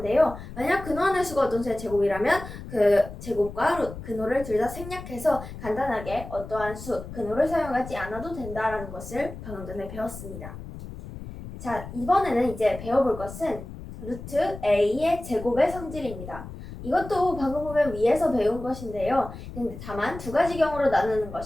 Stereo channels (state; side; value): noise; left; rumble, 12 dB below the sound